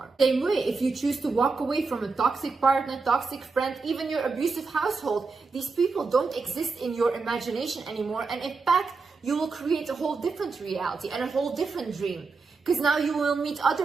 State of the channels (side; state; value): left; quieter; 4.3 dB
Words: Same way, if you choose to walk away from a toxic partner, toxic friend, even your abusive household, these people don't exist in your imagination anymore, and in fact, you will create a whole different reality and a whole different dream. Because now you will meet